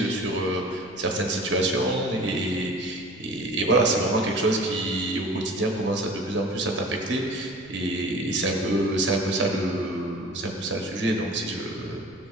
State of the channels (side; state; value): right; noise; rumble, 26 dB below the sound